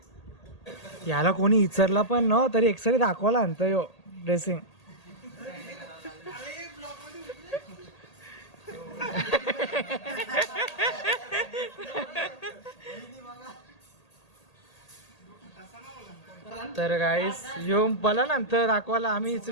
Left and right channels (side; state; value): right; late; 1.8 ms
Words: याला कोणी विचारला पण न तरी एक्सरे दाखवायला आणतं यो ड्रेसिंग. तर गाईस यो मला नंतर दाखवायला आम्ही